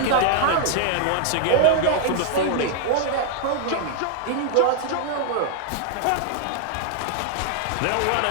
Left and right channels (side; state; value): both; different; correlation 0.00